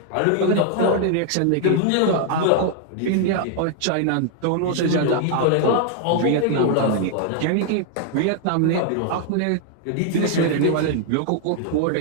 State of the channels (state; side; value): different; both; correlation 0.00